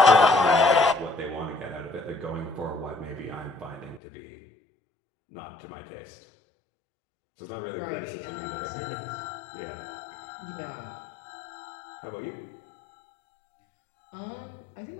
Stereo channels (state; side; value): drops out; right; at 4.0 s